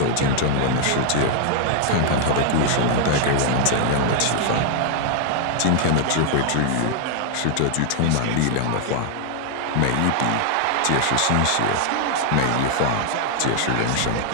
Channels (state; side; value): different; both; correlation 0.00